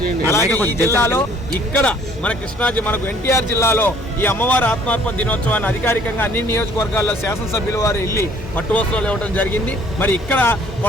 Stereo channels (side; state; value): both; normal; correlation 0.58